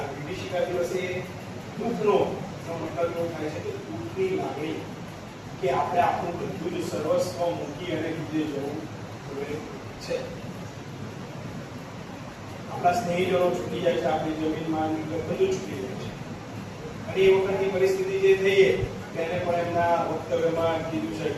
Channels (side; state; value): both; identical; correlation 1.00